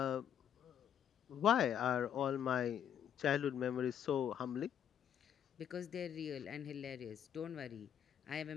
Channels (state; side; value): quieter; right; 9.3 dB